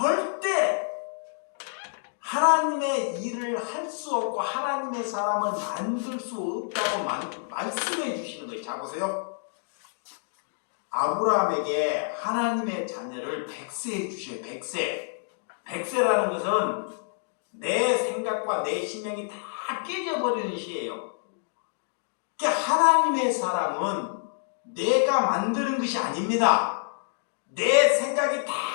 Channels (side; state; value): right; silent; digital silence